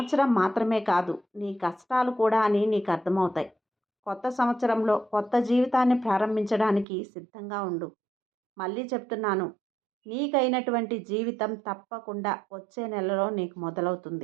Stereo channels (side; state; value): left; drops out; at 6.9 s